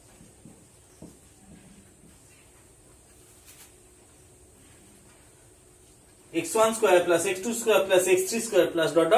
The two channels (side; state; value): both; identical; correlation 1.00